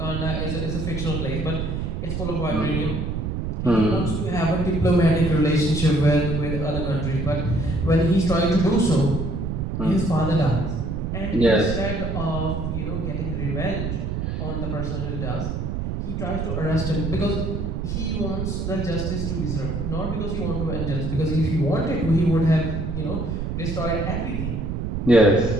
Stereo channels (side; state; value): right; noise; rumble, 3 dB below the sound